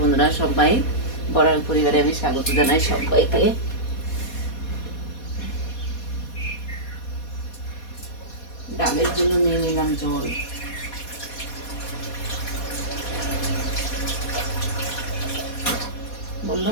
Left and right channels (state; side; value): late; right; 4.2 ms